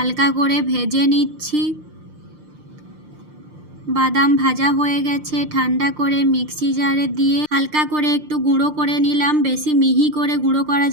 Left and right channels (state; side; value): late; left; 6.6 ms